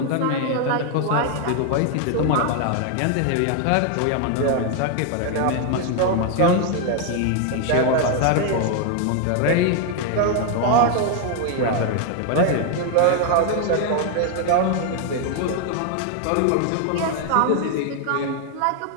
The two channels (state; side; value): different; both; correlation 0.00